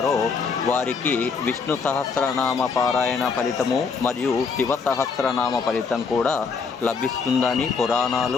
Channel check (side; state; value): right; quieter; 5.3 dB